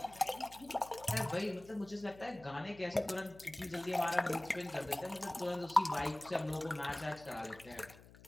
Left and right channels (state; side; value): noise; left; hum, 21 dB below the sound